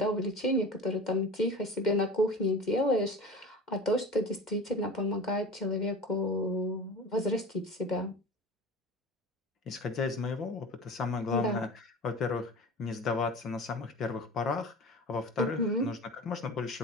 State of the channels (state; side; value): normal; both; correlation 0.35